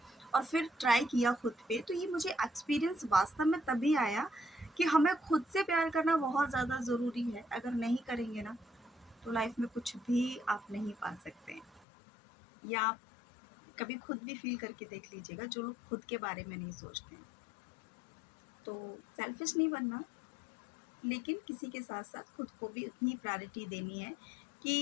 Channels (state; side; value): drops out; right; at 11.9 s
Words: और फिर ट्राई किया खुद पे। तो ये मुझे एक्सपीरियंस वास्तव में तभी आया कि हमें खुद से प्यार करना बहुत ज़्यादा ज़रूरी है। अगर नहीं करेंगे ना तो लाइफ में कुछ भी आप नहीं पा सकते हैं। या आप कभी खुद भी फील करके देख लीजिएगा, जो लोग खुद के बारे में नहीं सोचते हैं। तो सेल्फिश नहीं बनना, लेकिन किसी के साथ साथ खुद को भी उतनी प्रायोरिटी देनी है